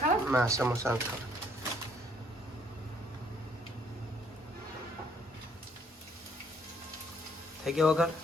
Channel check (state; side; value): normal; both; correlation 0.65